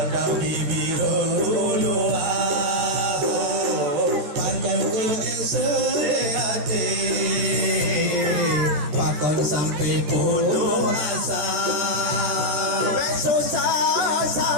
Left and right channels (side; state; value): left; late; 14 ms